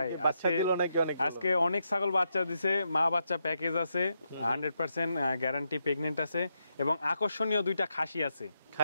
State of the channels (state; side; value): inverted; both; correlation -0.82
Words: আজকে অনেক ছাগল বাচ্চা দিছে, মা বাচ্চা প্যাকেজ আছে, 100% গ্যারান্টি প্রেগন্যান্ট আছে এবং আকর্ষণীয় দুইটা খাসি আছে।